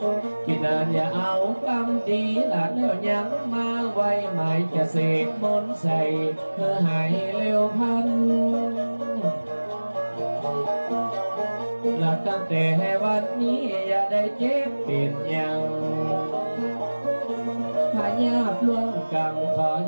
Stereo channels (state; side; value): inverted; both; correlation -1.00